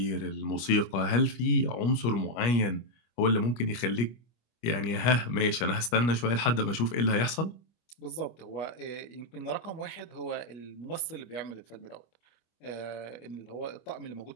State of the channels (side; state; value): right; late; 25 ms